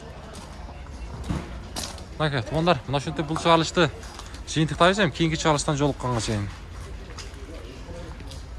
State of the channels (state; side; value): identical; both; correlation 1.00